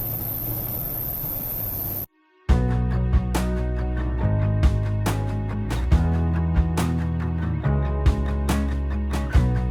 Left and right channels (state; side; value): identical; both; correlation 1.00